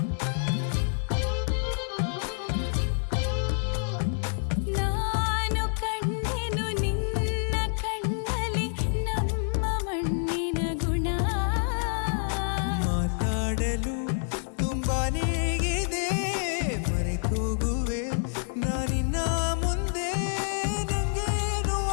ನಾನು ಕಂಡೆನು ನಿನ್ನ ಕಣ್ಣಲ್ಲಿ ನಮ್ಮ ಮಣ್ಣಿನ ಗುಣ ಮಾತಾಡಲು ತುಂಬಾನೇ ಇದೆ ಮರೆತೋಗುವೆ ನಾನಿನ್ನ ಮುಂದೆ ನಂಗೇನು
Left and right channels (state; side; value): silent; right; 56 dB below the other